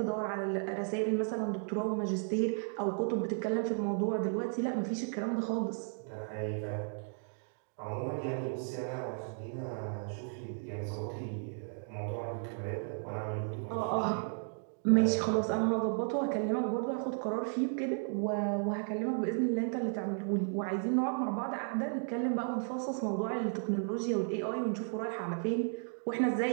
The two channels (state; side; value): silent; left; 55 dB below the other